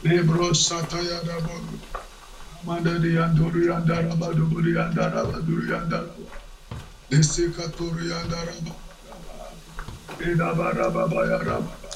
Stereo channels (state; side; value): identical; both; correlation 1.00